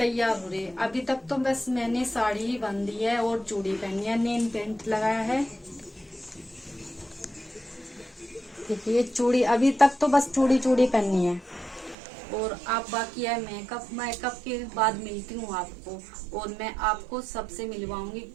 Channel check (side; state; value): left; drops out; at 12.0 s